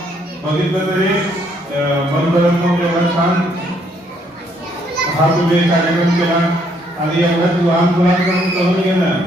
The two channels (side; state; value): both; normal; correlation 0.69